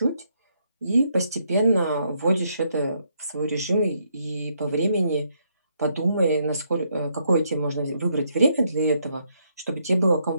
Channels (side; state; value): both; inverted; correlation -0.74